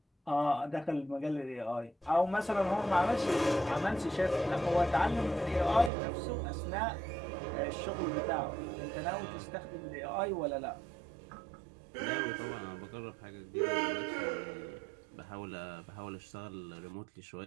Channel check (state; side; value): drops out; left; at 5.9 s